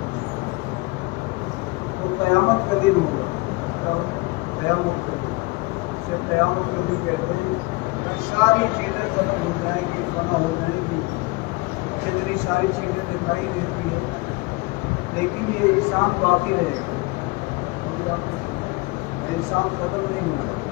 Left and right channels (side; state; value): right; quieter; 24.8 dB